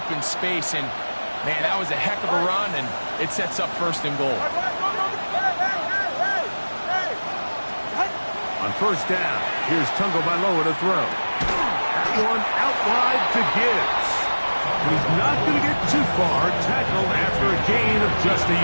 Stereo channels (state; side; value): inverted; both; correlation -1.00